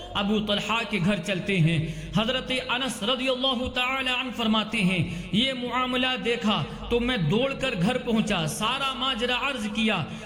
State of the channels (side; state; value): both; identical; correlation 1.00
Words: ابو طلحہ کے گھر چلتے ہیں۔ حضرت انس رضی اللہ تعالی عنہ فرماتے ہیں یہ معاملہ دیکھا تو میں دوڑ کر گھر پہنچا، سارا ماجرا عرض کیا۔